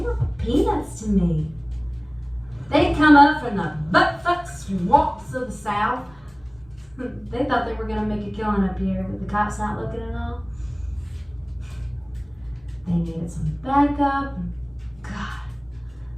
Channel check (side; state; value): left; noise; rumble, 28 dB below the sound